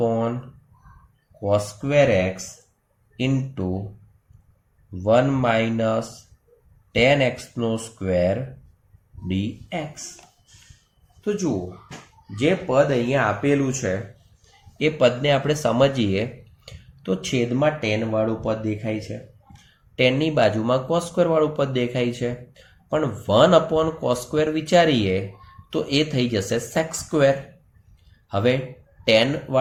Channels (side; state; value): both; identical; correlation 1.00